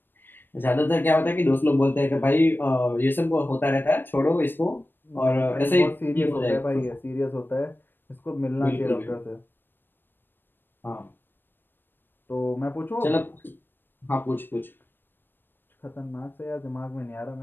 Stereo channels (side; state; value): right; late; 0.096 ms